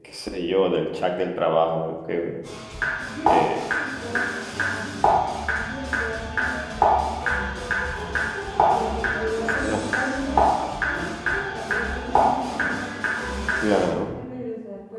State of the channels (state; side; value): identical; both; correlation 1.00